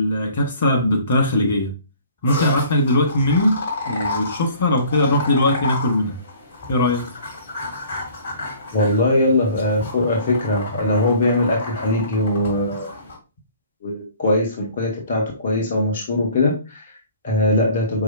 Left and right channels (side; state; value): both; inverted; correlation -0.51